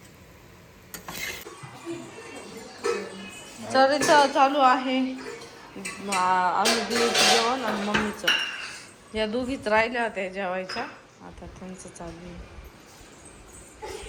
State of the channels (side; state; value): both; identical; correlation 1.00